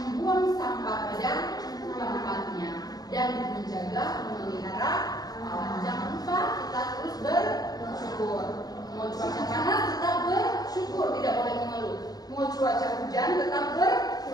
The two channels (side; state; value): right; late; 0.19 ms